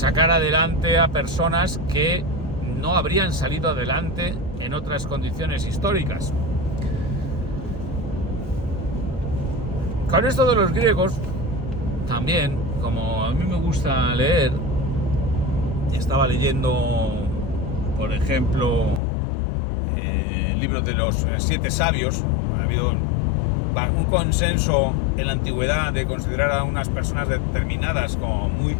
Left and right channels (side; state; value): right; drops out; at 19.0 s